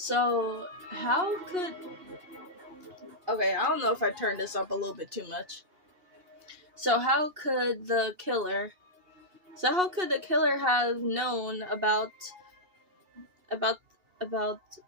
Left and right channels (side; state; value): left; late; 2.8 ms